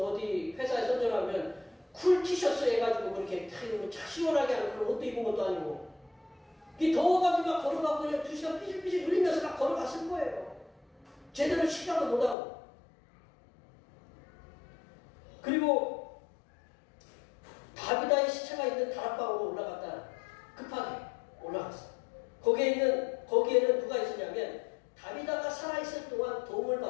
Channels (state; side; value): drops out; right; at 12.4 s